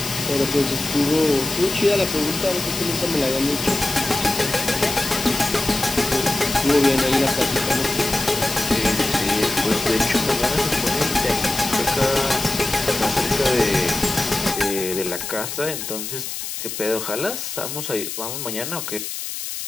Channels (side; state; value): left; noise; hiss, 6 dB below the sound